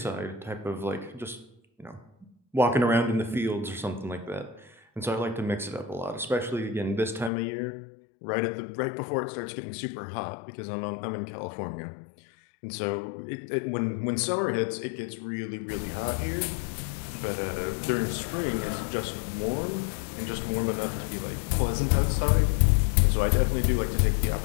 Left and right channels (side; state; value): right; drops out; at 7.3 s